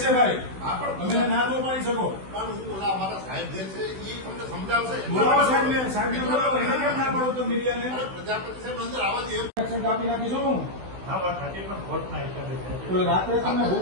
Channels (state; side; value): late; left; 16 ms